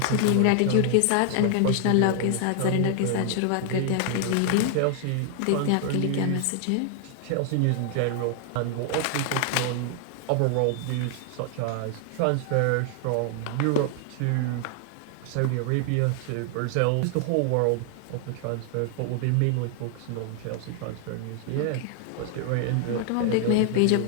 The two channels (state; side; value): different; both; correlation 0.00